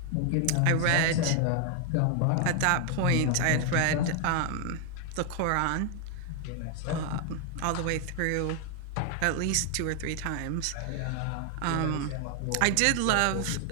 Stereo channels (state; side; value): different; both; correlation 0.00